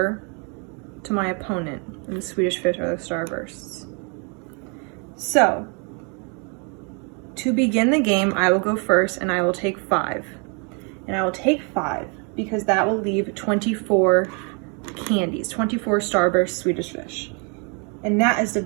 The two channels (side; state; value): left; quieter; 35.7 dB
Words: to my opponent. And the Swedish fish are the starbursts. So, to begin the game, I will go first and I will take 5. And I will take 5 because that will leave 24 candies, 24 starburst Swedish fish. And that is